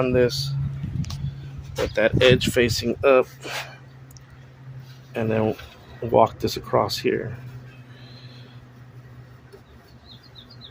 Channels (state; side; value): identical; both; correlation 1.00